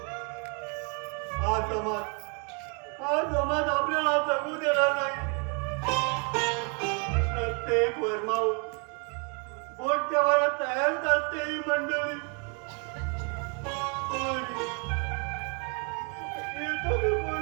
हा समाज आपल्याला जगू देणार नाही. प्रत्येक वर्मावर बोट ठेवायला तयारच असते ही मंडळी.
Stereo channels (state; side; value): quieter; left; 36.7 dB